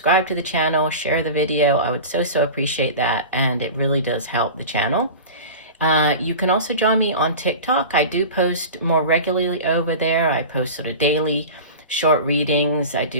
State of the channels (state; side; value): inverted; both; correlation -0.32